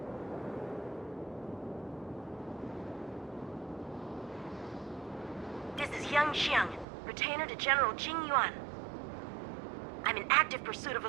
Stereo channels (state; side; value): drops out; left; at 6.9 s